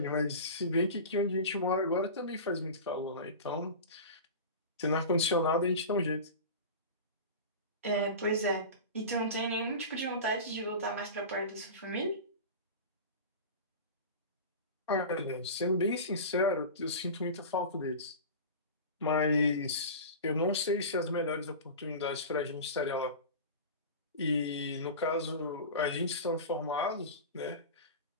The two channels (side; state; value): both; inverted; correlation -0.31